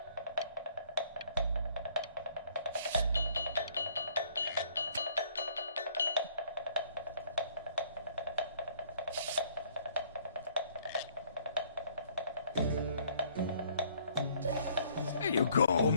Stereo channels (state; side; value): inverted; both; correlation -0.62